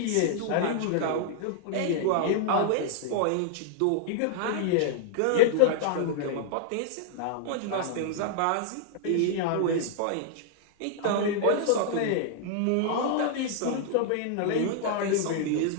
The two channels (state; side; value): different; both; correlation -0.01